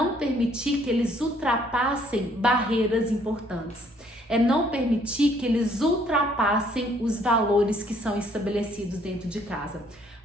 permitir que eles ultrapassem barreiras importantes. É não permitir que eles ultrapassem os valores que são estabelecidos dentro de casa.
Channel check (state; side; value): normal; both; correlation 0.64